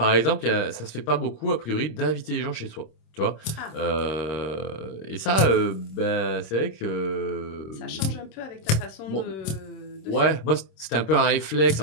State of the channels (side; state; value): right; late; 26 ms